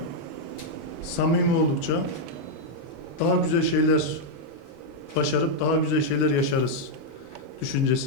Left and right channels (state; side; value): normal; both; correlation -0.02